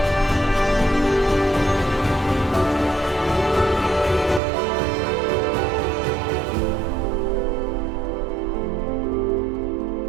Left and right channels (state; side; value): drops out; left; at 4.4 s